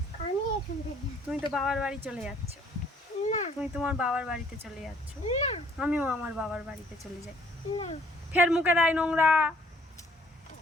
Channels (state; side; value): normal; both; correlation 0.60